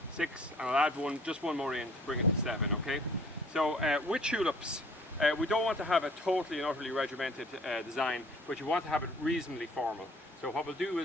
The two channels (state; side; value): normal; both; correlation 0.54